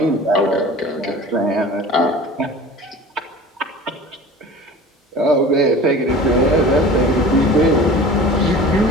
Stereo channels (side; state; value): both; normal; correlation 0.40